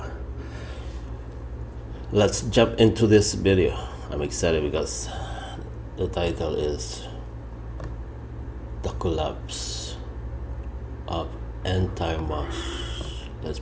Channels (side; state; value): both; identical; correlation 1.00